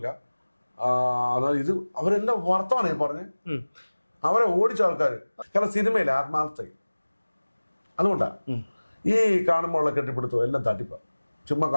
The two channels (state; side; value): inverted; both; correlation -1.00